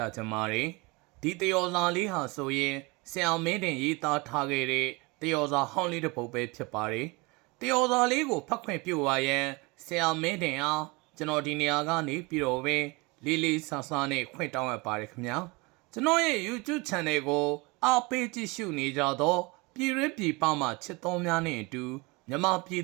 ားချင်ပါတယ်ဒီတယောဇာလေးဟာဆိုရင်ဆရာမင်းတင်ရေးသားထားခဲ့တဲ့တယောဇာဟောင်းလေးတစ်ပုဒ်ပဲဖြစ်ပါတယ်တယောဇာလေးကိုဖတ်ခွင့်ပြုပါရန်ဆရာမင်းတင်အားကျွန်တော်ဒီနေရာကနေပြီးတော့ပဲလေးလေးဆဆနဲ့ခွင့်တောင်းရပါတယ်ခင်ဗျာကျွန်တော်ရဲ့ YouTube Channel ကိုအားပေးကြည့်ရှုနေကြတော့ပြည်ရင်းပြည်ပမှာချစ်တော်များနဲ့အတူမြန်မာပြည်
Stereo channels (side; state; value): left; quieter; 26.3 dB